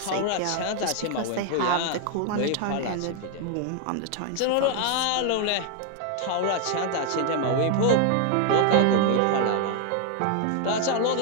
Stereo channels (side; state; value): both; different; correlation 0.00